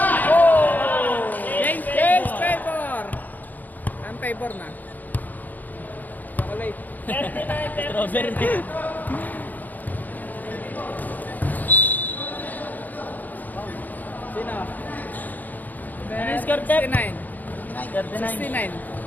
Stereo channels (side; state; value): right; late; 0.086 ms